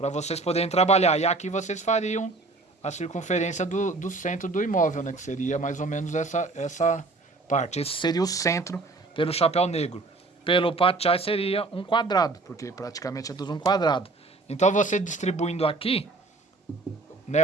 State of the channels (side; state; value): left; quieter; 3.5 dB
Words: vocês poderem trabalhar. E aqui vocês fariam a circunferência do centro do imóvel, né? Que seria mais ou menos essa parte. Esse seria o centro pelo chapéu negro. Pelo Pachai seria um quadrado, porque praticamente é tudo um quadrado. Então você distribuindo aqui, né?